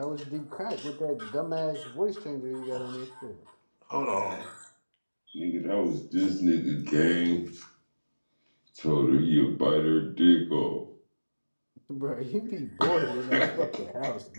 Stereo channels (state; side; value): inverted; both; correlation -1.00